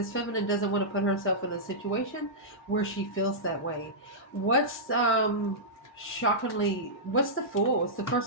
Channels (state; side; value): normal; both; correlation -0.13